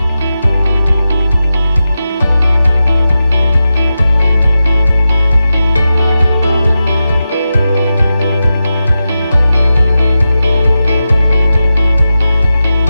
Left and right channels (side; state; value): both; inverted; correlation -0.91